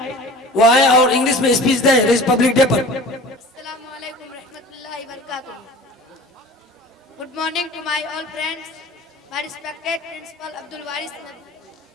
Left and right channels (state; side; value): normal; both; correlation 0.41